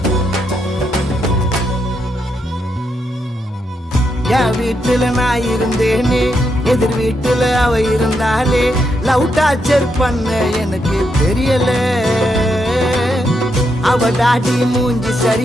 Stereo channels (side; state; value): both; normal; correlation 0.80